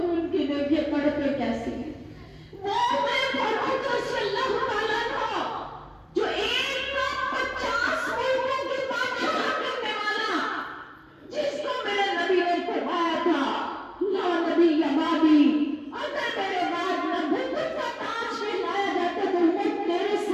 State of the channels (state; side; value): identical; both; correlation 1.00